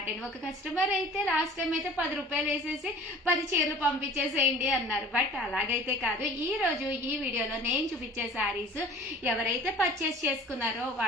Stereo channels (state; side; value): normal; both; correlation 0.45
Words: అండి. ఒక కస్టమర్ అయితే లాస్ట్ టైం అయితే 10 రూపాయలు వేసేసి 10 చీరలు పంపించేసేయండి అన్నారు. బట్ అలాగైతే కాదు. ఈ రోజు ఈ వీడియోలో నేను చూపించే సారీస్ ఎవరైతే పర్చేస్ చేసుకున్నారో